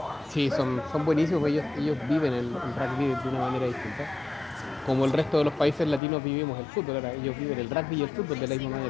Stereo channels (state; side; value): drops out; right; at 6.0 s